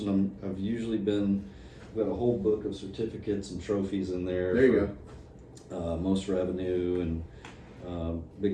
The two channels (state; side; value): identical; both; correlation 1.00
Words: I've usually been. I've got a whole book of certificates and trophies in there. There you go. Most revenue and